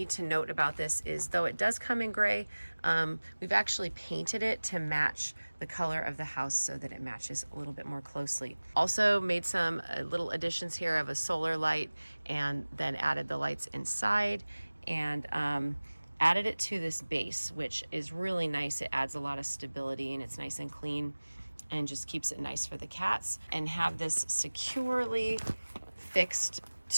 to note about this is, though it does come in gray, we've actually painted it to match the color of the house so that it matches a little bit more closely. Also made some little additions here of a solar light, and then added the lights inside, and added it to this base, which is really nice. It adds a lot of stability, and it's nice and clean and just keeps it nice for the cats. And have this securely fixed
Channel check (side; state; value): both; inverted; correlation -1.00